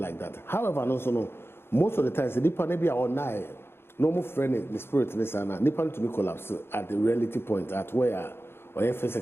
that. However, also no most of the times the nipa maybe are online normal friend the spirit ne sana nipa to be collapse at the reality point at where or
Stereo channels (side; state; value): right; late; 0.11 ms